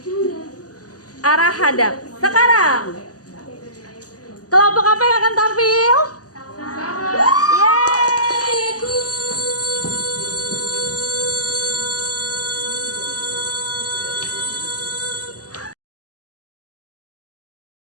arah hadap. Sekarang kelompok apa yang akan tampil? Yeay!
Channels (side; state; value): right; late; 0.67 ms